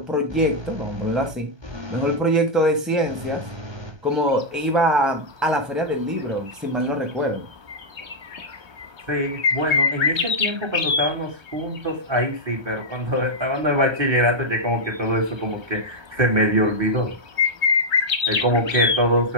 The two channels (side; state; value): left; late; 1.3 ms